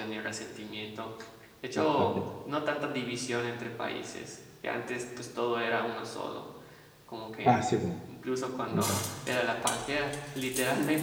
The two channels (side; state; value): both; identical; correlation 1.00